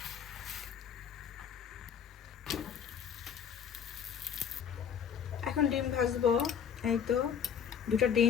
এখন ডিম ভাজবো। এই তো 2টা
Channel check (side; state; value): right; quieter; 7.9 dB